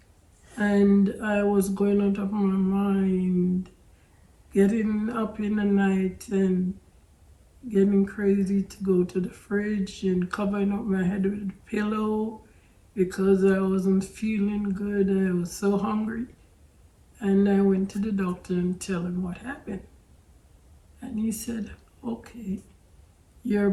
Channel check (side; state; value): both; identical; correlation 1.00